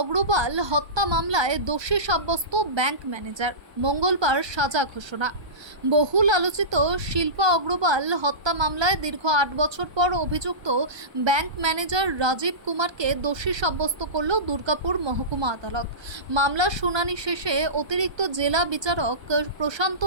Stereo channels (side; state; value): left; late; 1.2 ms